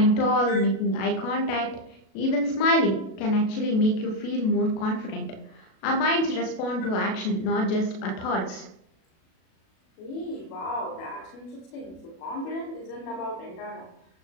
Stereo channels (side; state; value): right; late; 37 ms